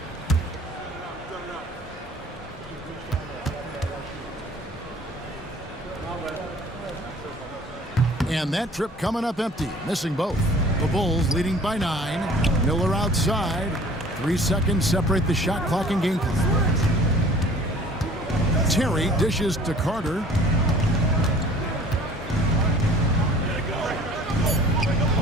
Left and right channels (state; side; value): normal; both; correlation 0.50